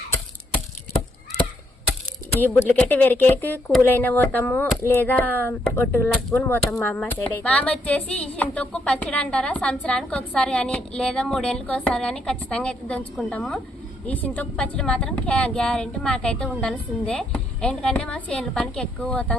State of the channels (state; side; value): normal; both; correlation 0.74